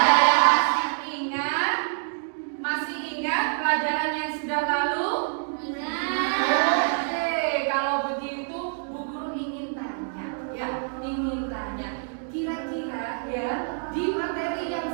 yang masih ingat? Masih ingat pelajaran yang sudah lalu? Oke, kalau begitu Bu Guru ingin tanya, ya, ingin tanya. Kira-kira ya, di materi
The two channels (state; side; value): silent; left; digital silence